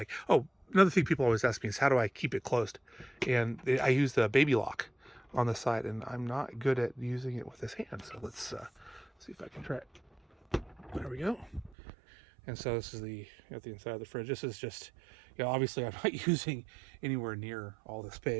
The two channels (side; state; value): left; drops out; at 11.8 s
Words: Oh, another thing people always ask me is how do I keep it closed? And I use the baby lock on the side, and I'm not good at using it with this hand. So let's see if I can try it. There we go. And so this is the inside of the fridge. This is just, obviously I'm not using anywhere near all the